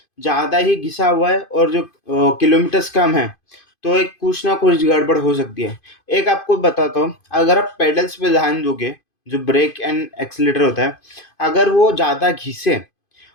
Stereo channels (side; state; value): right; late; 2.5 ms